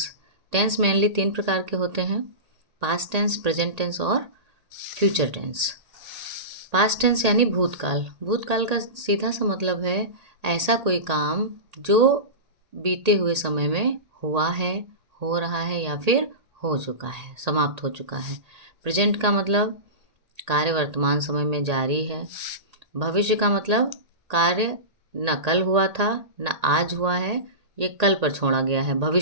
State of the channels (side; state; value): left; late; 1.8 ms